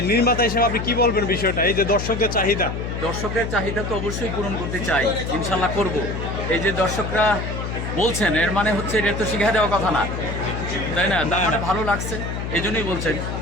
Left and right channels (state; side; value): noise; left; hum, 5 dB below the sound